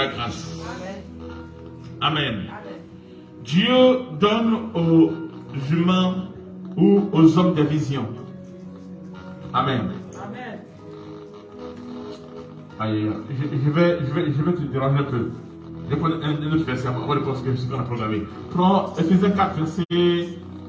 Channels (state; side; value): identical; both; correlation 1.00